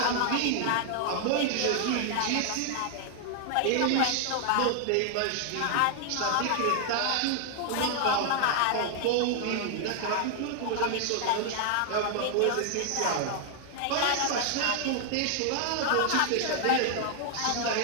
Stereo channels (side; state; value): both; different; correlation 0.00